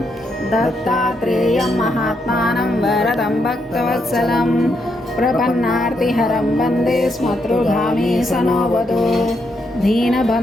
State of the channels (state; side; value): normal; both; correlation 0.79